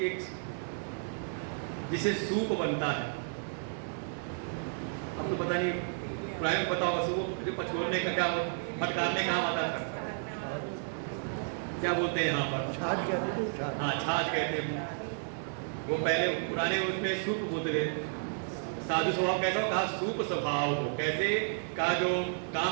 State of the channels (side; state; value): left; silent; digital silence